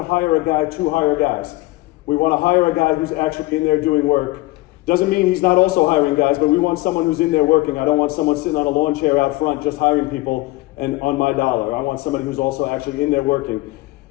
hire a guy to hire guys. We want to hire a guy who's actually in there doing work. Doesn't mean he's not also hiring guys, but we want someone who's in there working. I don't want someone sitting on a lawn chair out front just hiring people and on my dollar. I want somebody who's also actually in there working.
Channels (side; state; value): right; quieter; 20.5 dB